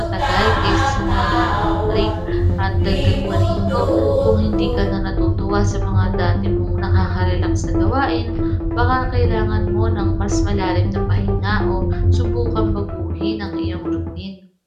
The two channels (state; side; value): identical; both; correlation 1.00